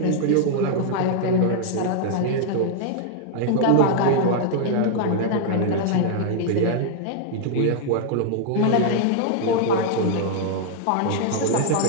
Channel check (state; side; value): different; both; correlation 0.00